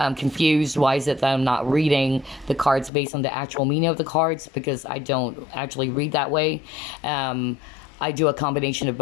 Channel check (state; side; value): drops out; right; at 2.9 s